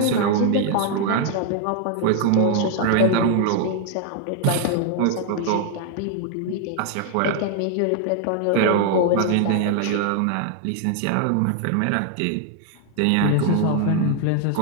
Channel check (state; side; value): different; both; correlation 0.00